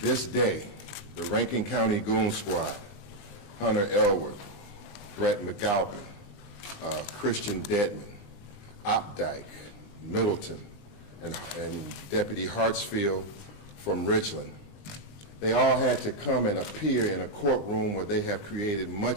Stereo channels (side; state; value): right; late; 20 ms